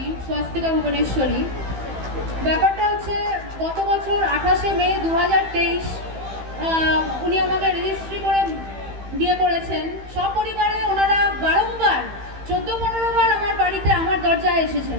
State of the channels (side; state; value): left; late; 15 ms